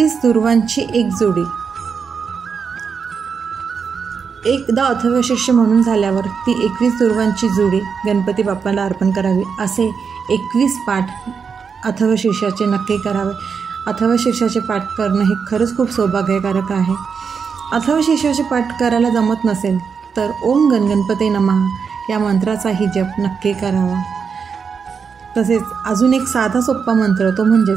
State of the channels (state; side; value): quieter; left; 6.0 dB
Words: दुर्वांची एक जोडी. एकदा अथर्वशीर्ष म्हणून झाल्यावर ती 21 दुर्वांची जोडी गणपती बाप्पाला अर्पण करावी. असे 21 पाठ अथर्वशीर्षाचे नक्की करावे. अथर्वशीर्षाचे पाठ करणं हे खरंच खूप सौभाग्यकारक आहे. अथर्वशीर्षाचे पाठ करायला जमत नसेल तर ओम गणगणपते नमः या मंत्राचाही जप नक्की करावा. तसेच अजून एक साधा सोपा मंत्र, तो